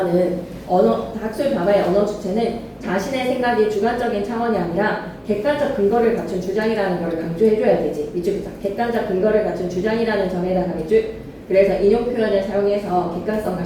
언어 주체는 자신의 생각이 주관적인 차원이 아니라 객관적 근거를 갖춘 주장이라는 걸 강조해줘야 되지. 밑줄 객관적 근거를 갖춘 주장이라는 점에다가 밑줄. 그래서 인용 표현을 사용해서 객관성과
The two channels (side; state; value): both; identical; correlation 1.00